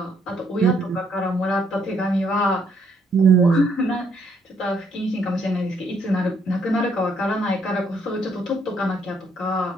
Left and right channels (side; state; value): both; normal; correlation 0.70